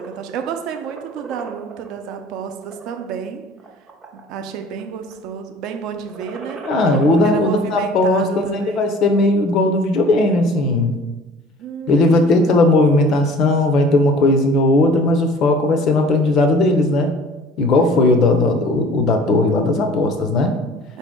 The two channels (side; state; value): both; normal; correlation 0.48